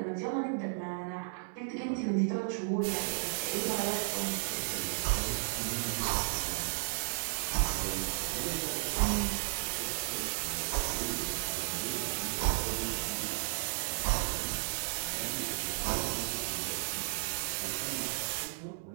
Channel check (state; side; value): silent; left; digital silence